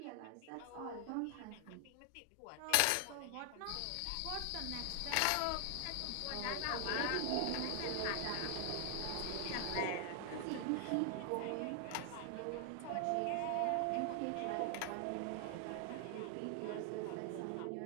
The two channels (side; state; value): both; different; correlation 0.00